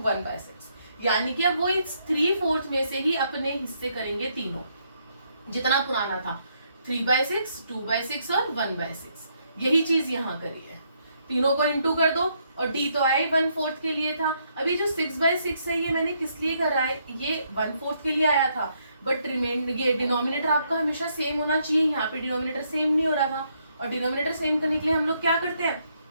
यानी कि अब वो इस 3/4 में से ही अपने हिस्से करेंगे तीनों, जितना पुराना था 3/6, 2/6 और 1/6। यही चीज यहाँ करी है, तीनों को इंटू कर दो, और D तो आया ही 1/4 के लिए था। अभी जो 6/6 है ये मैंने किस लिए करा है, ये 1/4 के लिए आया था, बट ये डिनोमिनेटर आपका हमेशा सेम होना चाहिए। यहाँ पे डिनोमिनेटर सेम नहीं हो रहा था, और डिनोमिनेटर सेम करने के लिए हम लोग क्या करते हैं,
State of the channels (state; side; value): inverted; both; correlation -0.74